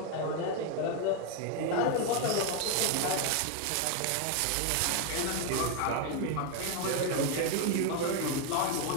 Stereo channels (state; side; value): different; both; correlation 0.01